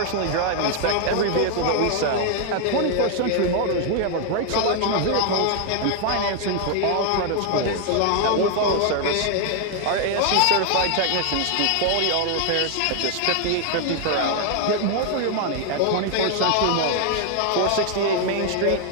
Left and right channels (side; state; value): both; different; correlation 0.00